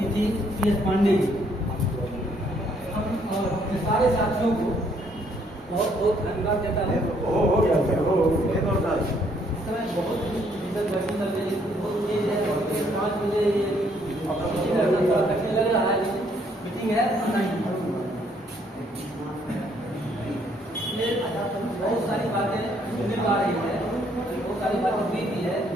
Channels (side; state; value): both; normal; correlation 0.67